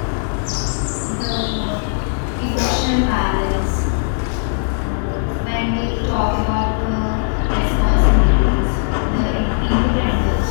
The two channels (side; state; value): right; silent; 62 dB below the other